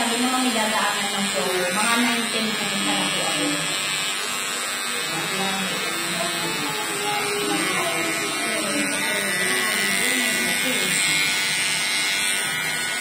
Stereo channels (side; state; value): both; identical; correlation 1.00